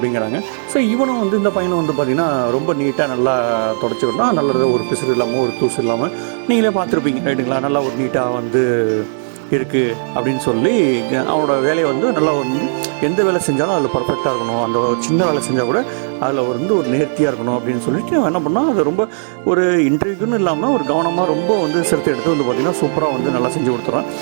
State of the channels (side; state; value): left; silent; digital silence